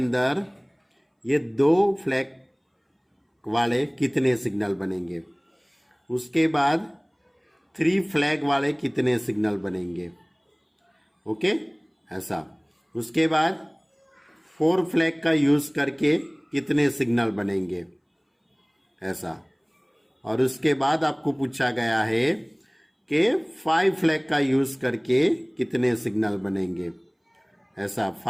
ये 2 फ्लैग वाले कितने सिग्नल बनेंगे। उसके बाद 3 फ्लैग वाले कितने सिग्नल बनेंगे। ओके, ऐसा। उसके बाद 4 फ्लैग का यूज करके कितने सिग्नल बनेंगे, ऐसा। और उसके बाद आपको पूछा गया है कि 5 फ्लैग का यूज करके कितने सिग्नल बनेंगे, ऐसा।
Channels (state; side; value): identical; both; correlation 1.00